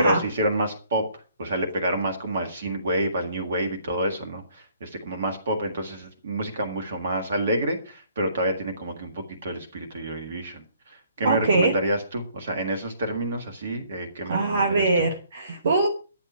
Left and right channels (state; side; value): inverted; both; correlation -0.63